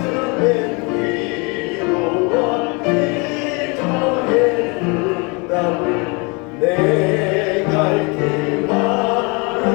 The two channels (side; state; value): right; quieter; 30.1 dB